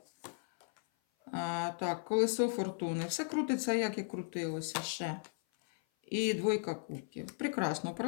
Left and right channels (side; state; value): right; silent; 54 dB below the other